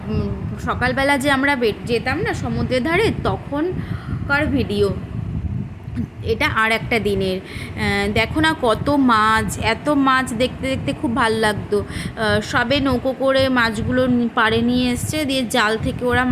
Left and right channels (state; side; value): identical; both; correlation 1.00